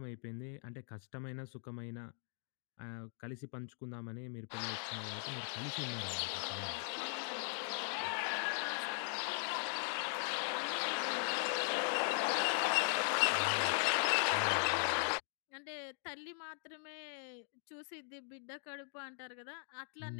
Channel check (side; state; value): right; silent; 51 dB below the other